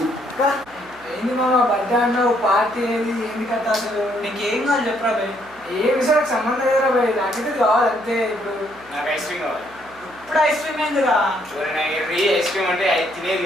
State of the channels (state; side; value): noise; right; hum, 25 dB below the sound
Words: ఏంది మామ బర్త్డే అన్నావు పార్టీ ఏది ఏంది కథ అసలు నీకేం కావాలి చెప్పరా భయ్ ఏ విషయానికి సంబంధం లేదురా భయ్ నాకైతే కావాలి అంతే ఇప్పుడు నాకు ఐస్ క్రీమ్ కావాలి. ఇప్పుడు ఐస్ క్రీమ్ ఏందిరా ఐస్ క్రీమ్ అంటే తినేది